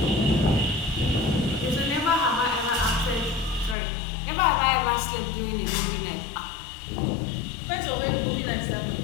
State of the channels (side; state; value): right; drops out; at 3.8 s